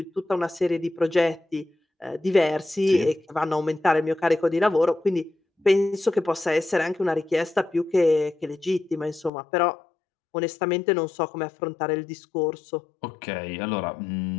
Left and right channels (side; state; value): right; drops out; at 9.3 s